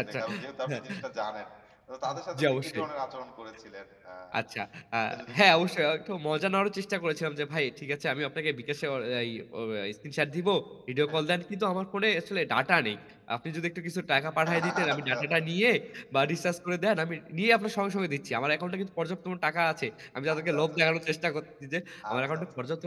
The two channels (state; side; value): identical; both; correlation 1.00